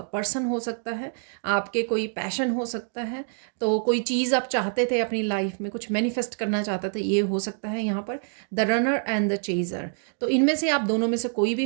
पर्सन हो सकता है, आपके कोई पैशन हो सकता है, तो कोई चीज़ आप चाहते थे अपनी लाइफ में, कुछ मैनिफेस्ट करना चाहते थे, ये हो सकता है यहाँ पर the runner and the chaser. तो इनमें से आप दोनों में से कोई भी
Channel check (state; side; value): silent; left; 61 dB below the other